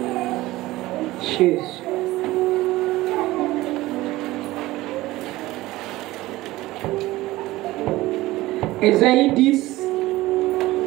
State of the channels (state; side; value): quieter; left; 18.1 dB